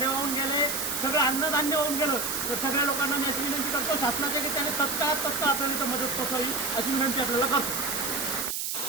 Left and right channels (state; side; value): noise; right; hiss, 2 dB below the sound